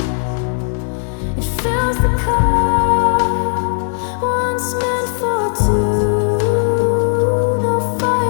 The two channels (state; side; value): silent; right; 68 dB below the other